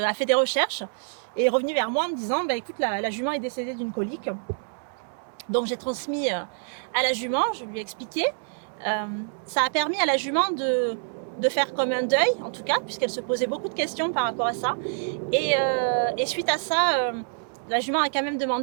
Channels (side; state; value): left; silent; 61 dB below the other